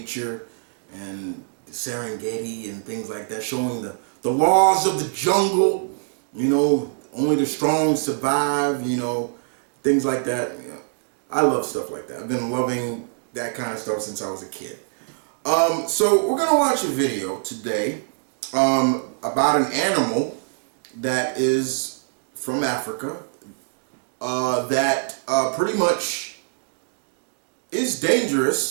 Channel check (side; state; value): left; silent; digital silence